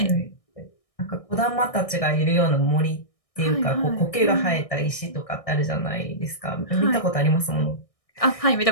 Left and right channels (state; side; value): late; right; 1.6 ms